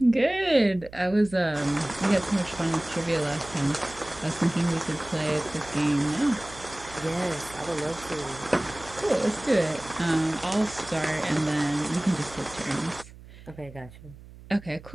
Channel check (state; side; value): noise; right; hum, 19 dB below the sound